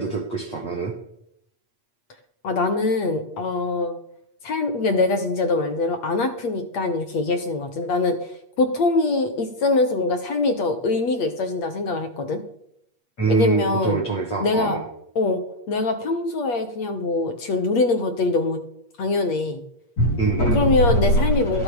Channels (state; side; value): late; right; 8.5 ms